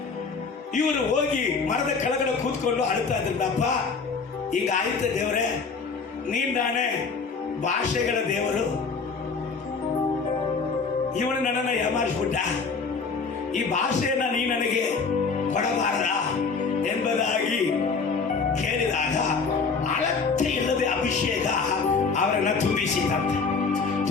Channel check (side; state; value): right; quieter; 4.9 dB